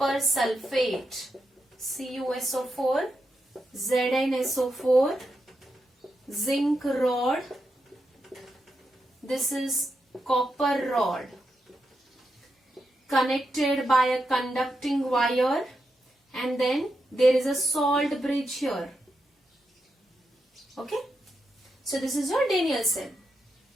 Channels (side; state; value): both; normal; correlation 0.85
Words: sulfate, CuSO4, ZnSO4, zinc rod. This is copper rod connected by a conducting wire, and then there is a salt bridge here. Okay? So this is your Daniell cell.